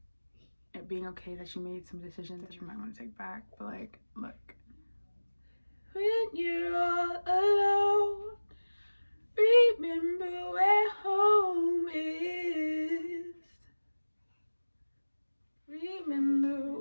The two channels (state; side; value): inverted; both; correlation -1.00